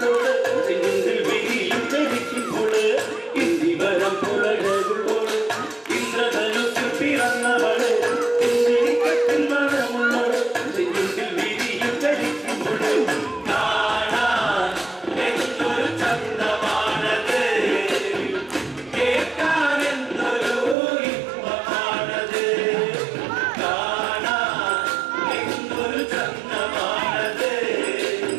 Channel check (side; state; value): left; drops out; at 20.8 s